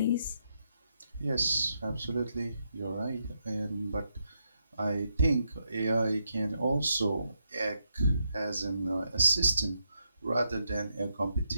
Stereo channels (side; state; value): both; inverted; correlation -0.82